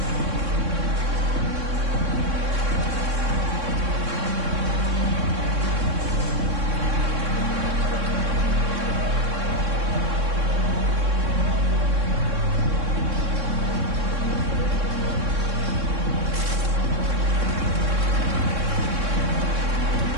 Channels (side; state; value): left; late; 3.6 ms